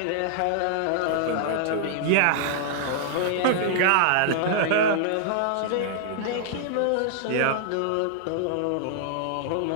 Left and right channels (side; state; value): both; different; correlation -0.01